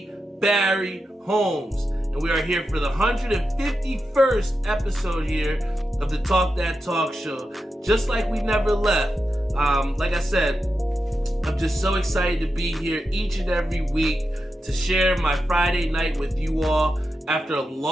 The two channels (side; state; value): both; normal; correlation 0.89